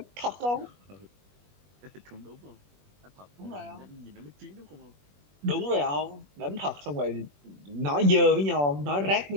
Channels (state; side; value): late; left; 21 ms